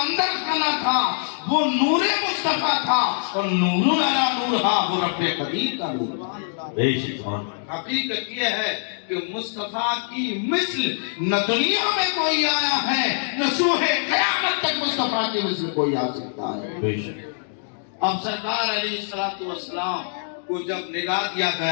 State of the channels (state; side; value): silent; right; digital silence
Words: خانہ تھا وہ نور مصطفیٰ تھا، اور نور علی نور تھا، وہ رب قدیر کا نور تھا۔ بے شک، سبحان اللہ، حقیقت یہ ہے کہ مصطفیٰ کی مثل نہ دنیا میں کوئی آیا ہے، نہ سوہ قیامت تک مصطفیٰ کی مثل کوئی آ سکتا ہے۔ بے شک، اب سرکار علیہ السلام کو جب نگاہ دیا